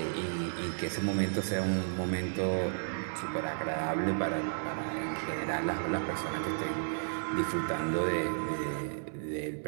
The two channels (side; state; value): left; silent; 56 dB below the other